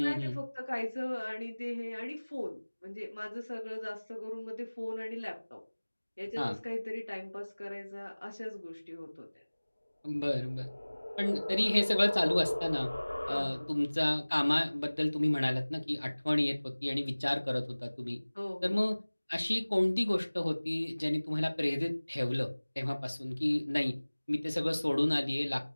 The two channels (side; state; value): both; inverted; correlation -1.00